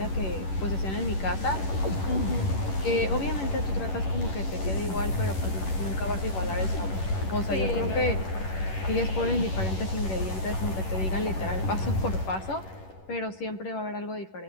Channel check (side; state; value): right; late; 11 ms